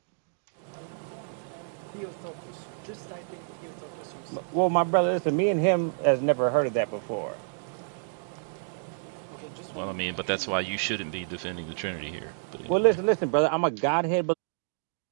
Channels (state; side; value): silent; left; digital silence